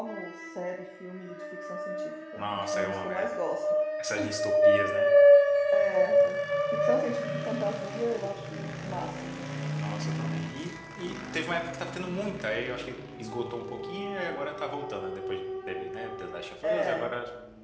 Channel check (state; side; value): identical; both; correlation 1.00